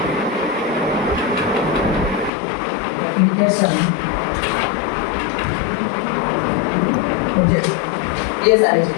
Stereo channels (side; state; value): right; drops out; at 2.3 s